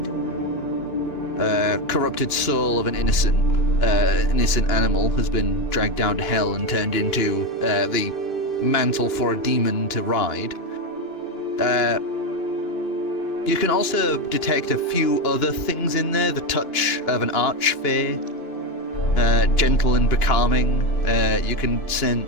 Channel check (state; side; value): late; right; 2.6 ms